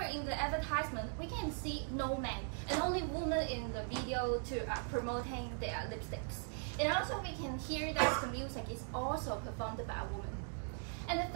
in the advertisement, we can see no man and only women in the video to promoting their lipsticks. And also, we can hear that the music is also performed by a woman. And the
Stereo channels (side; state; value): left; silent; 51 dB below the other